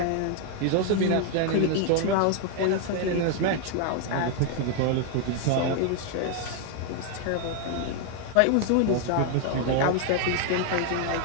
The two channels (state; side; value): different; both; correlation 0.00